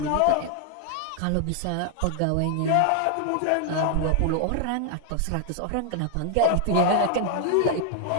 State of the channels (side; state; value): both; different; correlation 0.00